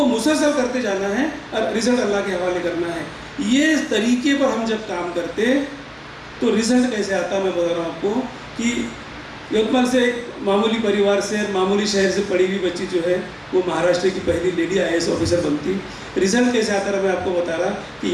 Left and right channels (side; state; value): both; identical; correlation 1.00